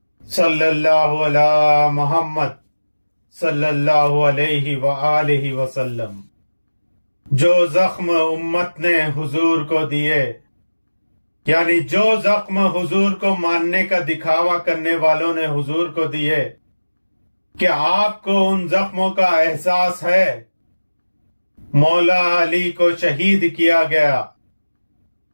صلی اللہ علی محمد صلی اللہ علیہ وآلہ وسلم۔ جو زخم امت نے حضور کو دیے، یعنی جو زخم حضور کو ماننے کا دکھاوا کرنے والوں نے حضور کو دیے، کیا آپ کو ان زخموں کا احساس ہے؟ مولا علی کو شہید کیا گیا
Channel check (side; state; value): both; inverted; correlation -1.00